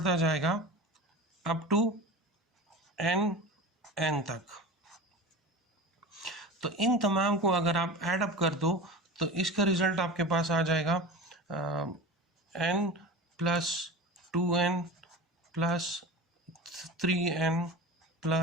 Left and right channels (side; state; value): both; normal; correlation 0.32